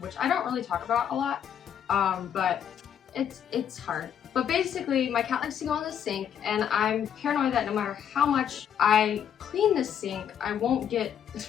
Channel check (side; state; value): right; quieter; 8.9 dB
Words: I don't really talk about a lot, but it's hard. But basically, my cat likes to go in the sink, and I'm paranoid that no matter how much I clean the sink, I won't get